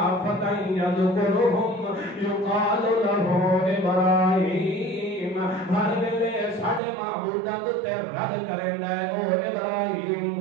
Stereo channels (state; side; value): drops out; left; at 6.8 s